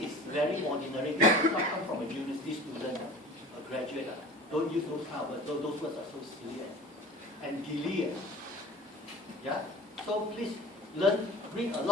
very ordinary. This does not come from a university student, a graduate. Don't use those kind of words. Those words are so silly and gilly. Yeah. So please read a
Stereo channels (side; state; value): both; normal; correlation 0.40